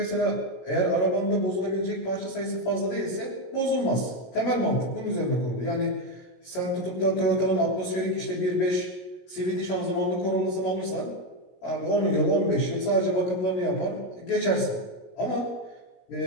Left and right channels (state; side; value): late; right; 17 ms